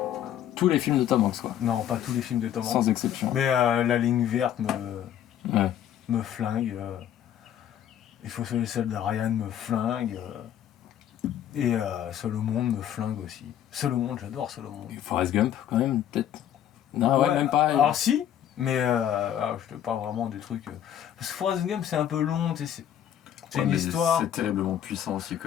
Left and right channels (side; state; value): right; quieter; 10.4 dB